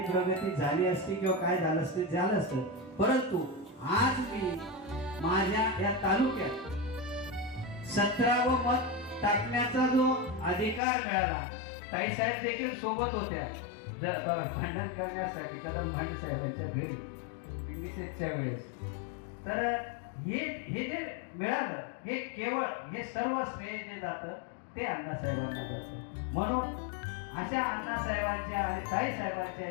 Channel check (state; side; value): drops out; right; at 10.8 s